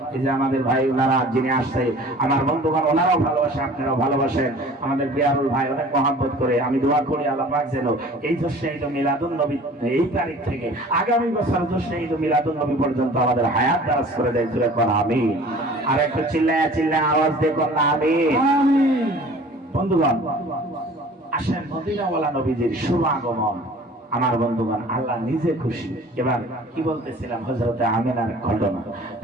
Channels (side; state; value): both; normal; correlation 0.46